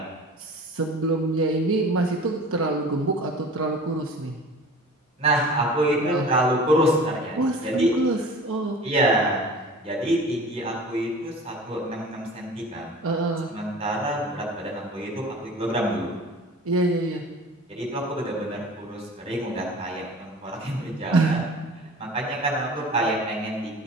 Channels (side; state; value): both; normal; correlation 0.41